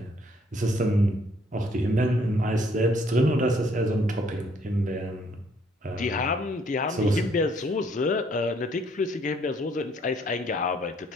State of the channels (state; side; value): normal; both; correlation 0.65